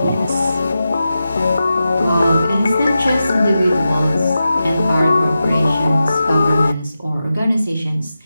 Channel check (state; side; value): inverted; both; correlation -0.91